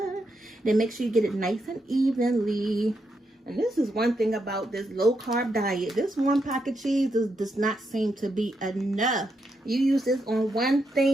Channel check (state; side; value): normal; both; correlation 0.82